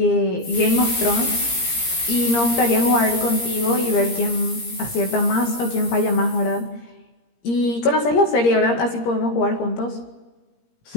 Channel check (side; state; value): right; late; 17 ms